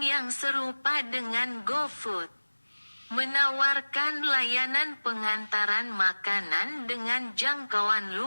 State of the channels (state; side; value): inverted; both; correlation -1.00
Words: yang serupa dengan GoFood, menawarkan layanan pengantaran makanan dengan jangkauan